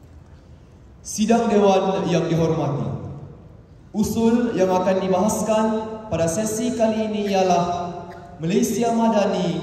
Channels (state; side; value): identical; both; correlation 1.00